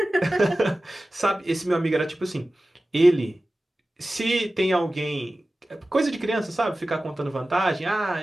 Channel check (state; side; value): normal; both; correlation 0.96